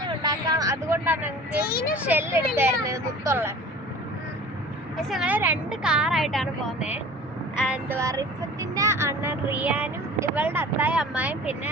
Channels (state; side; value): normal; both; correlation 0.42